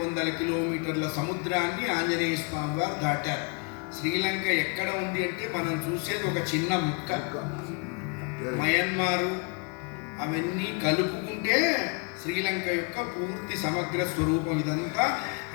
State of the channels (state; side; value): quieter; right; 33.9 dB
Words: కిలోమీటర్ల సముద్రాన్ని ఆంజనేయ స్వామి వారు దాటారు. శ్రీలంక ఎక్కడ ఉంది అంటే మనం చూసేది ఒక చిన్న ముక్క. మయన్మారు అవన్నీ కలుపుకుంటే శ్రీలంక యొక్క పూర్తి సమగ్ర స్వరూపం. ఇదంతా